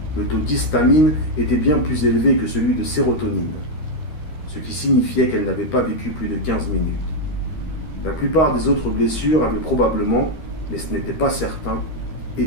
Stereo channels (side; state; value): right; late; 13 ms